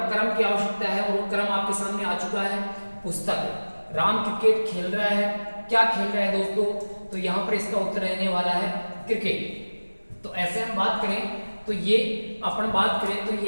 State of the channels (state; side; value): inverted; both; correlation -1.00